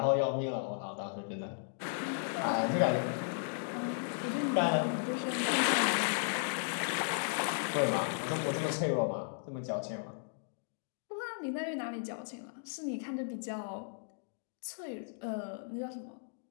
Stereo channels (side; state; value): right; silent; digital silence